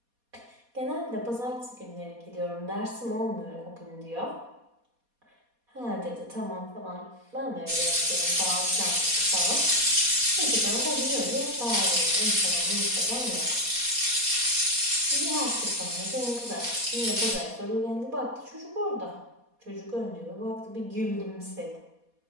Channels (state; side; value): late; left; 4.2 ms